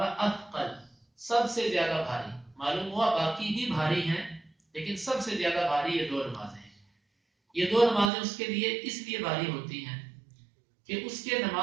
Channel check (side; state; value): left; drops out; at 8.1 s